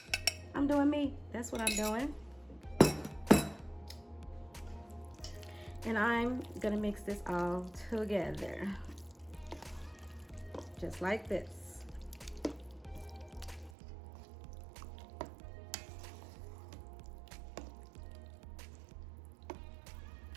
I'm doing me. That's what I'm doing. And I'm gonna mix this all together. Just like this.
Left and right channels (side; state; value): left; drops out; at 13.7 s